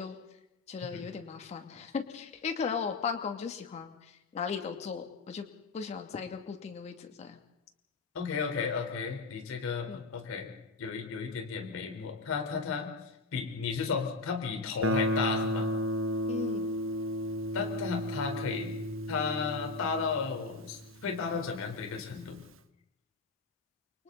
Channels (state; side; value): quieter; right; 3.5 dB